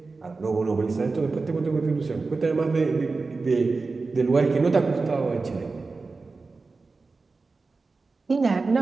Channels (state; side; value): quieter; left; 4.0 dB